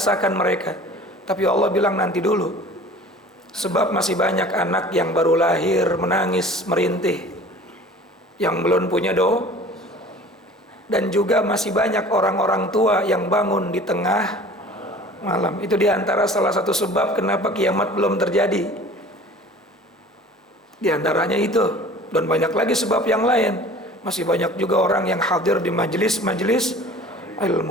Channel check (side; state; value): both; normal; correlation 0.45